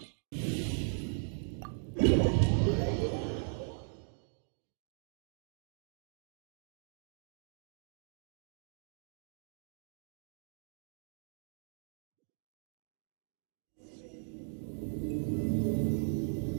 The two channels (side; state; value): left; silent; digital silence